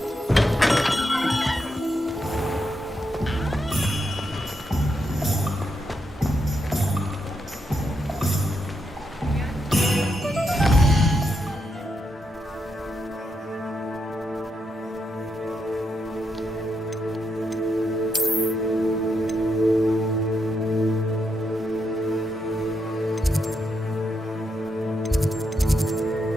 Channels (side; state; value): both; normal; correlation 0.82